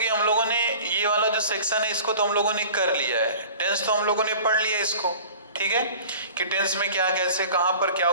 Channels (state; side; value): inverted; both; correlation -0.42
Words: हम लोगों ने ये वाला जो section है इसको तो हम लोगों ने कर लिया है, टेंस तो हम लोगों ने पढ़ लिया है इसको, ठीक है, कि टेंस में क्या कैसे कहाँ पर क्या